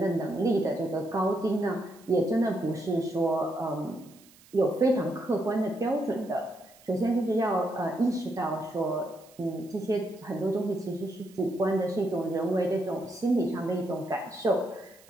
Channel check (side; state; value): right; noise; hiss, 26 dB below the sound